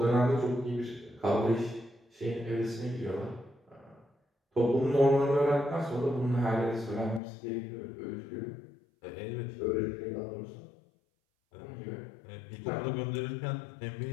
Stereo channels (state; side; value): drops out; right; at 7.2 s